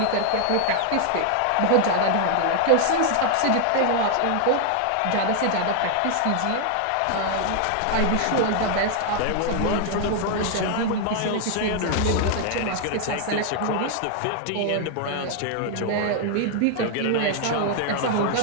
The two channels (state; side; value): different; both; correlation 0.00